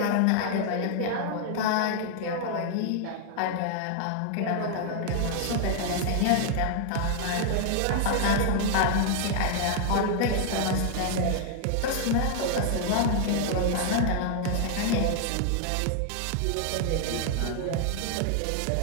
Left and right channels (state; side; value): different; both; correlation 0.00